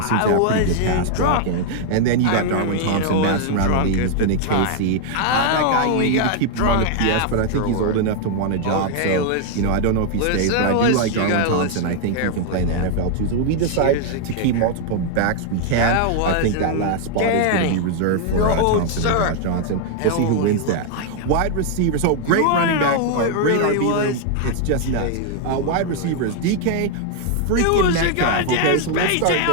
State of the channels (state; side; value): different; both; correlation 0.00